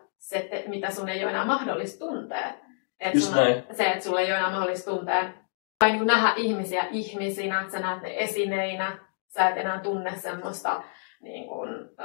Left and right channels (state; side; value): silent; right; digital silence